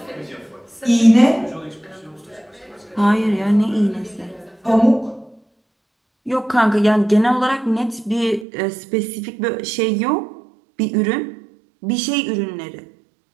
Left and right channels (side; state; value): left; drops out; at 8.5 s